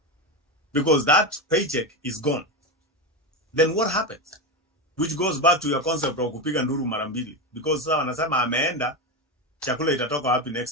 Because that paycheck is gone. Then what happens? Which goes back to your concept of kupiga nduru mara mbili. Because sasa wanasema ameenda, chakula itatoka wapi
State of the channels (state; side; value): normal; both; correlation 0.15